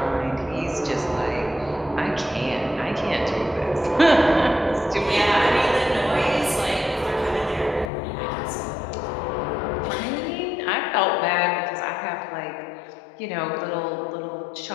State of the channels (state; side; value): drops out; right; at 7.9 s